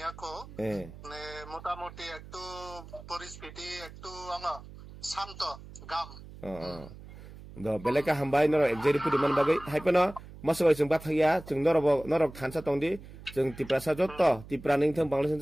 মানে মোটামুটি একটু পরিস্থিতি একটু শান্ত গাম do beleka hambai noro exeri pudi man bagai haipano masoi jeng bathaya jeng norok thansa tongdi jeng tiprasa jotto tipraning thang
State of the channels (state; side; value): noise; right; hum, 16 dB below the sound